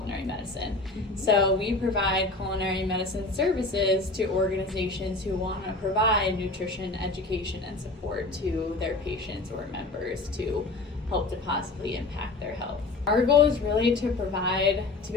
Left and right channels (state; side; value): quieter; right; 3.2 dB